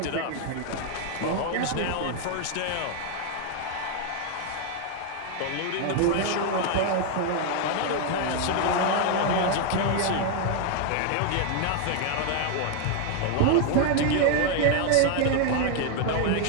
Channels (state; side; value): different; both; correlation 0.00